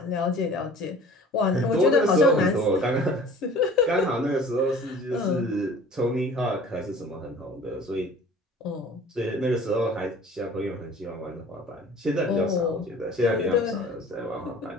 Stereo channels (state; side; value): normal; both; correlation 0.46